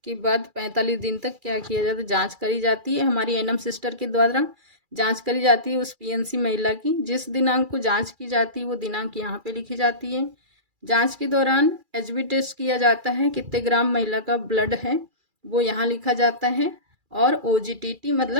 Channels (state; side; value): late; left; 2.3 ms